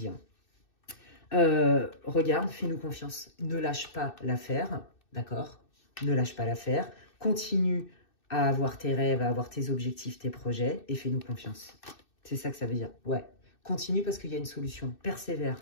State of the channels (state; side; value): late; right; 2.6 ms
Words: Hein. Regarde, fais-nous confiance. Ne lâche pas l'affaire, d'accord? Ne lâche pas l'affaire. Continue à avoir tes rêves, à avoir tes objectifs, tes projets et fais-nous confiance. C'est ça que ça veut dire. Ouais. Continue parce qu'il y a une solution. Persévère,